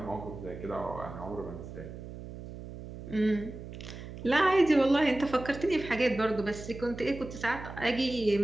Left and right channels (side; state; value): right; noise; hum, 12 dB below the sound